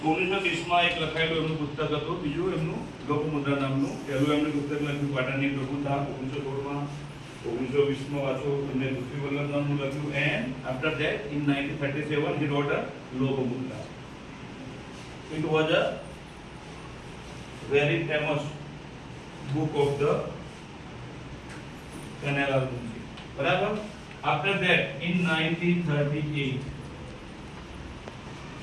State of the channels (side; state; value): both; identical; correlation 1.00